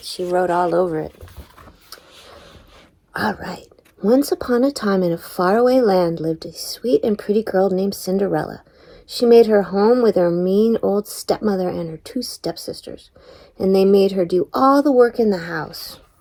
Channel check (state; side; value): identical; both; correlation 1.00